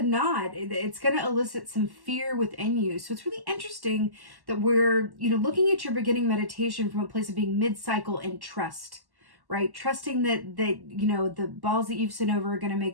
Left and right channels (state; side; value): late; left; 1.1 ms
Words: not, it's going to elicit some fear within you. So it's really interesting that we're, looking at your beginning meditation from a place of being mid-cycle and trust, right? Trusting that the balls that you've sent over are going to